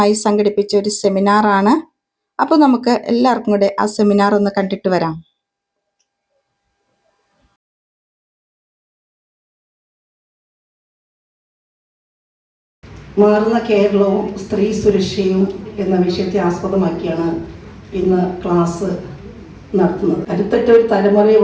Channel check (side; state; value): both; identical; correlation 1.00